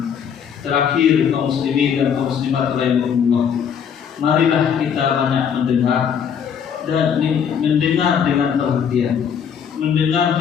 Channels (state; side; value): quieter; right; 7.7 dB